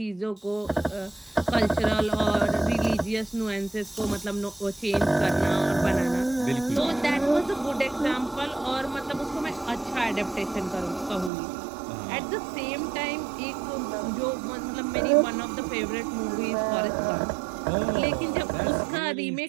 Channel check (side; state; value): left; drops out; at 11.3 s